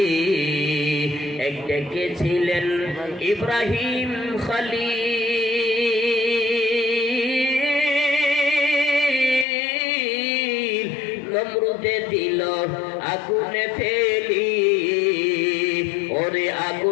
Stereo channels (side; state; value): right; drops out; at 9.5 s